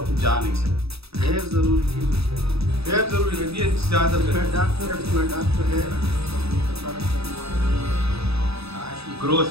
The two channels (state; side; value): late; left; 0.78 ms